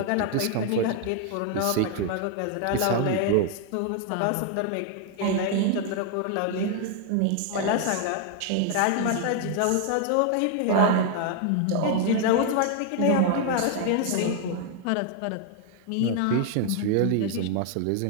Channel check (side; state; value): both; different; correlation 0.00